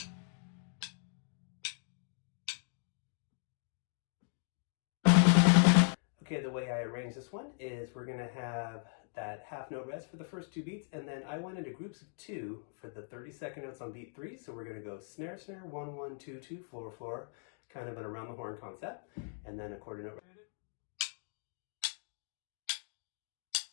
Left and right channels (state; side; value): silent; right; digital silence